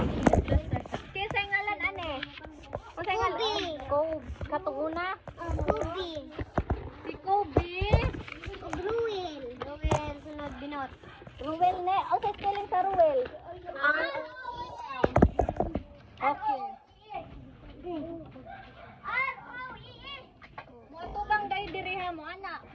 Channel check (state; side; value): identical; both; correlation 1.00